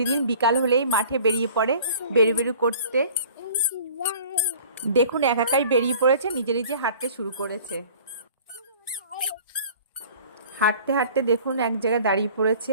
বিকাল হলেই মাঠে বেরিয়ে পড়ে বেরু করতে। দেখুন একাই বেরিয়ে পড়েছে, নিজে নিজে হাঁটতে শুরু করেছে। হাঁটতে হাঁটতে দেখুন এক জায়গায় দাঁড়িয়ে পড়েছে,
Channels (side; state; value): both; inverted; correlation -0.47